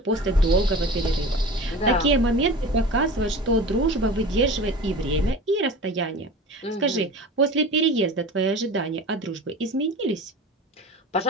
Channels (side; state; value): both; normal; correlation 0.35